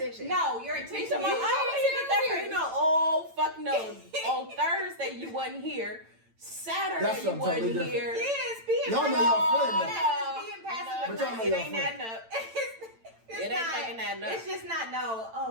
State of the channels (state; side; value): late; left; 8.9 ms